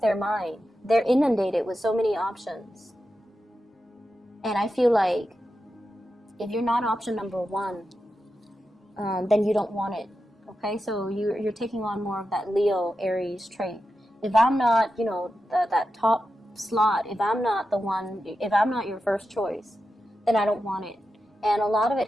mind, they're inundated with so many options. And I feel like if you're not option number one, then you don't want it. Okay, so you're taking on more of that Leo Aries trait. If I'm not, that top slot, if I'm not your first choice, then I don't want it. And a lot of it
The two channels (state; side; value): normal; both; correlation 0.90